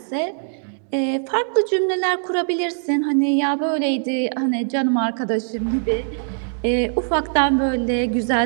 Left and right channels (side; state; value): left; silent; digital silence